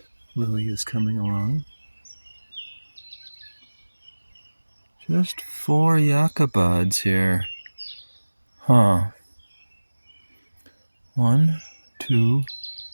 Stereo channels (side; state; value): both; inverted; correlation -1.00